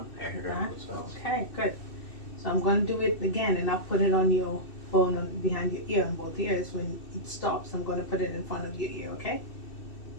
I heard it on both sides. Okay, good. So I'm going to do it again, and I'll put it on your phone behind your ear on both ears. When it stops, I'm going to put it in front of your ear, okay?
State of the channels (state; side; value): late; right; 2.6 ms